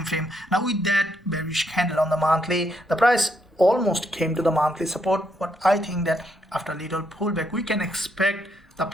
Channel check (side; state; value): both; normal; correlation 0.76